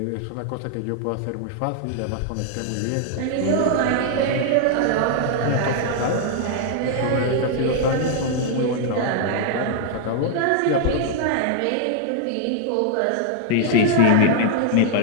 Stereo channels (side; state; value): both; different; correlation 0.00